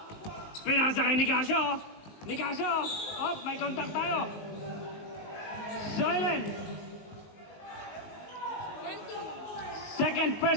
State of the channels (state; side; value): late; right; 19 ms